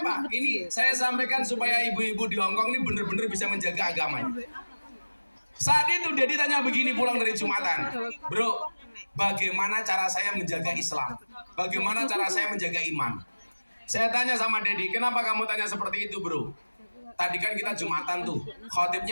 apa? Ini saya sampaikan supaya ibu-ibu di Hongkong ini benar-benar bisa menjaga agamanya. Saat itu Deddy tanya begini pulang dari Jumatan, bro, bagaimana cara saya menjaga Islam? Bagaimana cara saya menjaga iman? Saya tanya sama Deddy, kenapa kamu tanya seperti itu, bro? Tadi kan kita Jumatan tuh,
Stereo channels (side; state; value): both; inverted; correlation -1.00